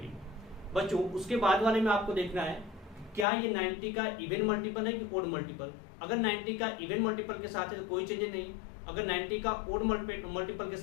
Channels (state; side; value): drops out; right; at 3.2 s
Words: बच्चों उसके बाद वाले में आपको देखना है क्या ये 90 का इवन मल्टीपल है कि ओड मल्टीपल। अगर 90 का इवन मल्टीपल के साथ है तो कोई चेंजेस नहीं, अगर 90 का ओड मल्टीपल के